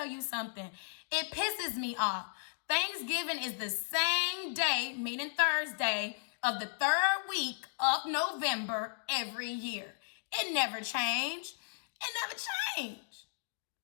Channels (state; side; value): silent; right; digital silence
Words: you something. It pisses me off. Thanksgiving is the same day, meaning Thursday, of the third week of November every year. It never changed.